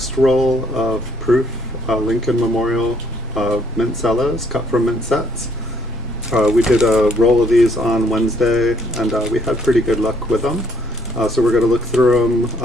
roll of proof Lincoln Memorial mint cellos cut from mint sets. We did a roll of these on Wednesday, and we had pretty good luck with them. So we're going to look through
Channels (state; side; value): normal; both; correlation 0.66